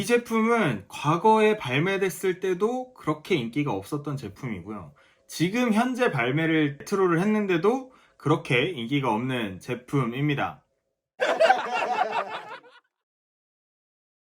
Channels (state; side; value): identical; both; correlation 1.00